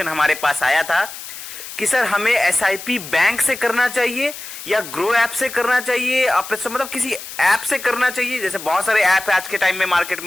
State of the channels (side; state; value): left; noise; hiss, 12 dB below the sound